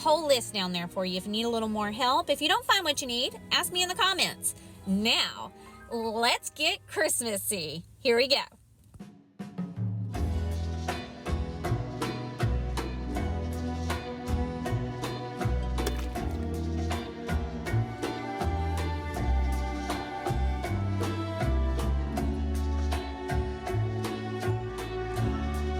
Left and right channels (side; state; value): both; identical; correlation 1.00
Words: list down there for you if you need a little more help. If you don't find what you need, ask me in the comments. Now, let's get Christmassy. Here we go.